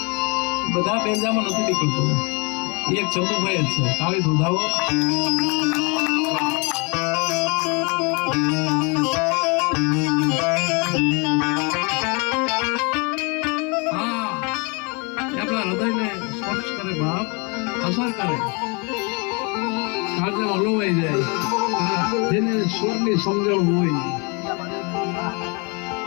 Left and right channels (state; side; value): quieter; right; 31.7 dB